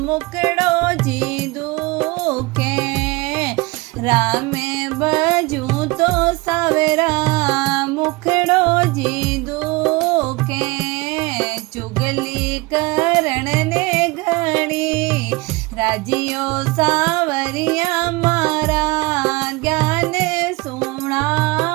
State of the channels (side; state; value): left; quieter; 23.9 dB